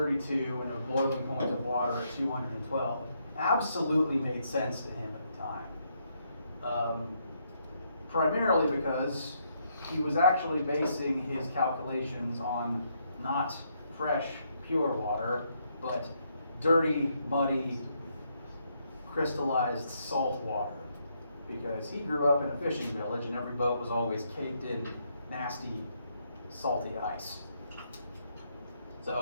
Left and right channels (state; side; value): inverted; both; correlation -0.75